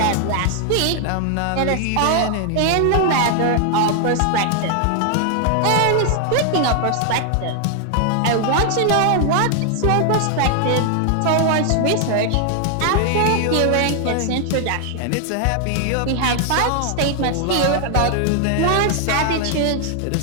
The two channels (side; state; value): both; different; correlation 0.00